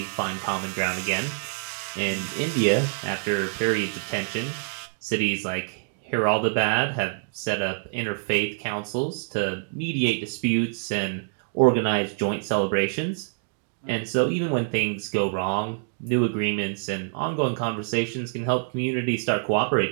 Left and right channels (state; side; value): silent; left; digital silence